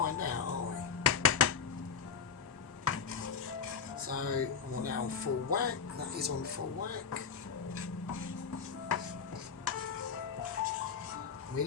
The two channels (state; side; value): quieter; right; 6.5 dB